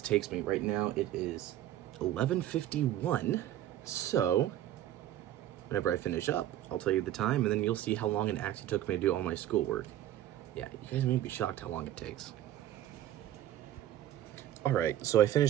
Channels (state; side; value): quieter; left; 12.5 dB